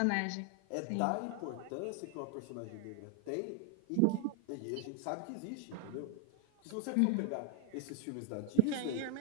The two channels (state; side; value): different; both; correlation 0.00